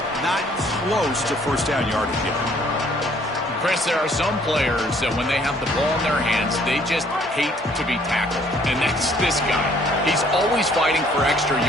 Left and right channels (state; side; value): normal; both; correlation 0.61